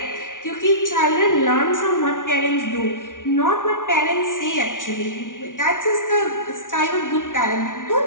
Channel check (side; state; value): right; late; 0.88 ms